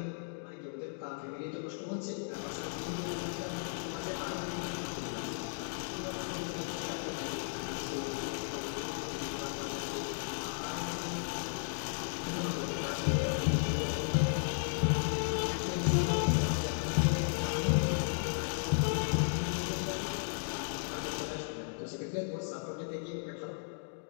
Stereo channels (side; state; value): right; silent; digital silence